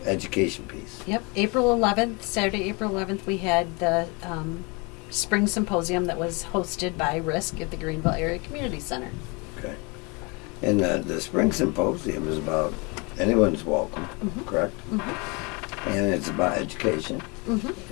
education piece. Yep, April 11th, Saturday, April 11th, we had the Spring Symposium that was hosted by RISC at the Greenville Area Community Center. Okay. And the Spring Symposium is about anyone's welcome, Mhm. correct? Mm-hmm. And it's about education Mm-hmm.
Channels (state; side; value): quieter; right; 29.5 dB